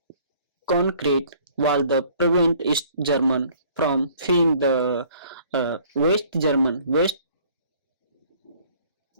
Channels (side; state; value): both; inverted; correlation -0.56